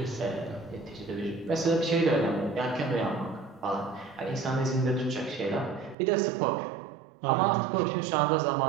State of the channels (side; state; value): left; drops out; at 6.0 s